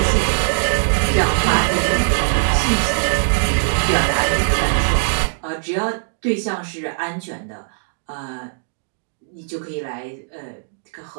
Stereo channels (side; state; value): left; silent; digital silence